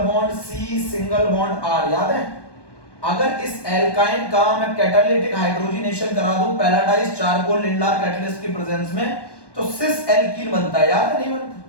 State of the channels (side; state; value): right; late; 1.2 ms